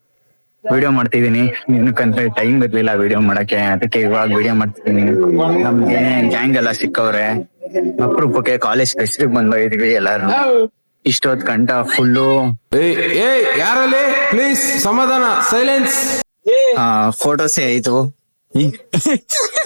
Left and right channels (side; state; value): both; inverted; correlation -1.00